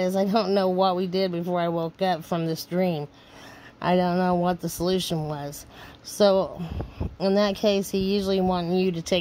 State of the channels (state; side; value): identical; both; correlation 1.00